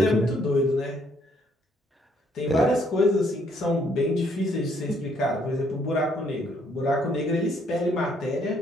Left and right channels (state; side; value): normal; both; correlation 0.68